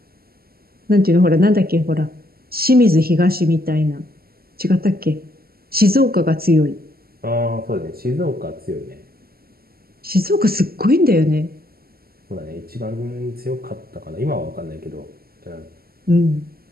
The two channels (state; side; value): late; left; 0.44 ms